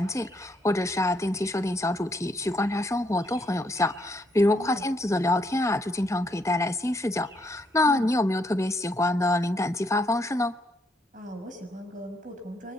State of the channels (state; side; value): normal; both; correlation 0.73